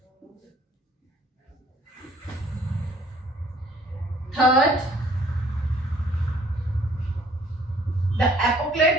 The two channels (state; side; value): normal; both; correlation 0.59